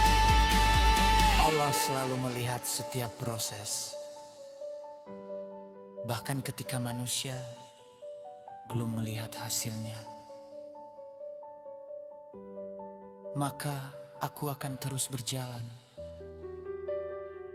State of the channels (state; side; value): identical; both; correlation 1.00